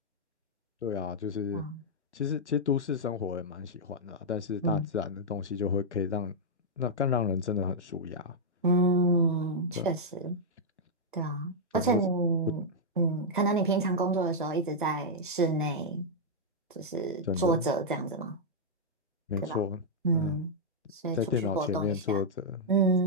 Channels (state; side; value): normal; both; correlation -0.06